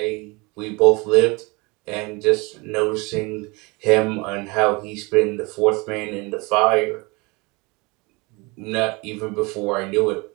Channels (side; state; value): left; quieter; 26.6 dB